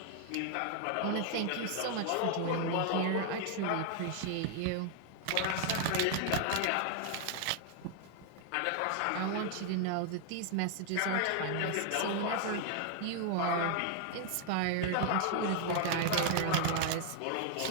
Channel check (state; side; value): different; both; correlation 0.00